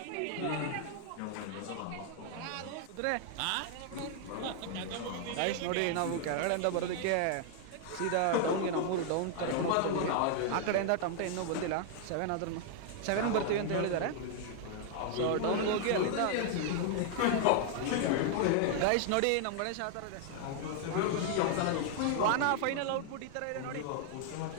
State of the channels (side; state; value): both; different; correlation 0.00